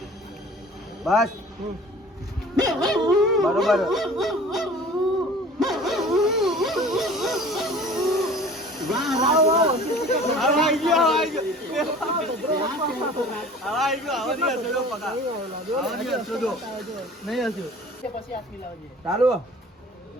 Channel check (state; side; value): normal; both; correlation 0.45